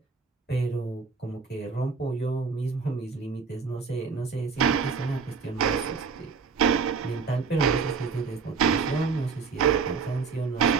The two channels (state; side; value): quieter; left; 5.2 dB